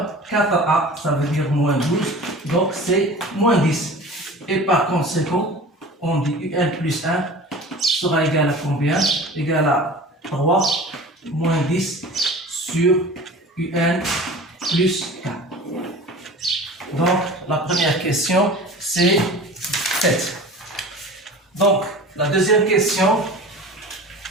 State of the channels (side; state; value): both; normal; correlation 0.39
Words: 4A, ça veut dire moins 12, donc c'est moins 10. Et par conséquent, on dit UN plus 1 sera égal à combien? Égal à 3 moins 10 sur UN plus 4. Donc, la première question, c'est faite. Donc, la deuxième question,